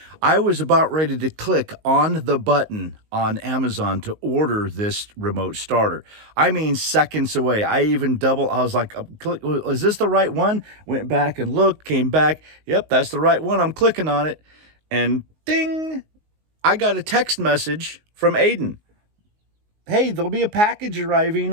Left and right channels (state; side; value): late; left; 19 ms